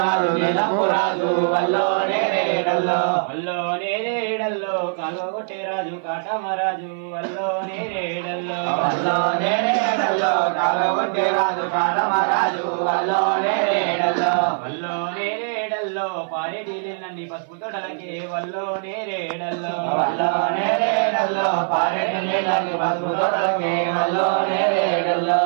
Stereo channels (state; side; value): silent; left; 56 dB below the other